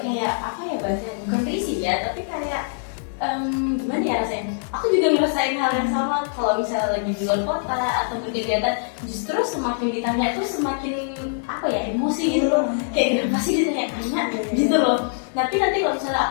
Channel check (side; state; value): right; silent; digital silence